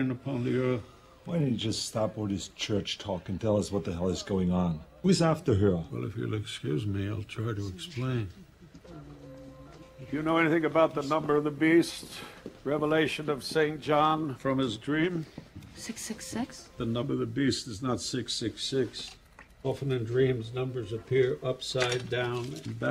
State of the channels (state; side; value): identical; both; correlation 1.00